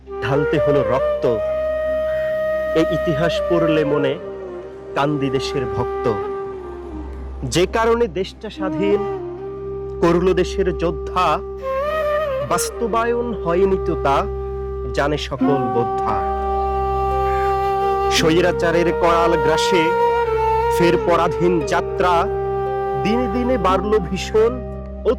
ঢালতে হলো রক্ত, এই ইতিহাস পড়লে মনে কান্দি দেশের ভক্ত। যে কারণে দেশটা স্বাধীন করল দেশের যোদ্ধা, বাস্তবায়ন হয়নি তো তা জানে সকল বোদ্ধা। স্বৈরাচারের করাল গ্রাসে ফের পরাধীন যাত্রা, দিনে দিনে বাড়ল ভীষণ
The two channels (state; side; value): identical; both; correlation 1.00